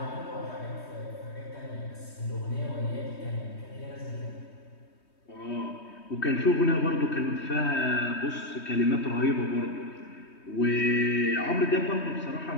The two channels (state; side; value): late; right; 3.2 ms